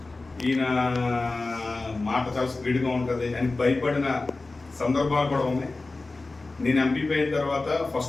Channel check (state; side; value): quieter; right; 3.4 dB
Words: ఈయన మాట చాలా స్పీడ్గా ఉంటుంది అని భయపడిన సందర్భాలు కూడా ఉన్నాయి. నేను ఎంపీపీ అయిన తర్వాత